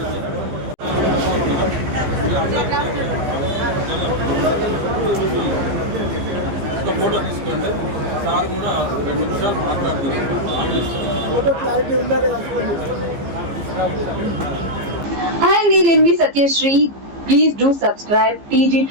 ఒక ఫోటో తీసుకోండి. సార్ కూడా 2 నిమిషాలు మాట్లాడుతున్నారు. Hi, నేను మీ Satyasri. Please do subscribe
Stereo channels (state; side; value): late; left; 15 ms